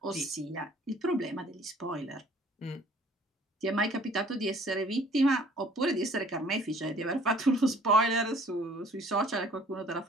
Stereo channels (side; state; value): both; normal; correlation 0.55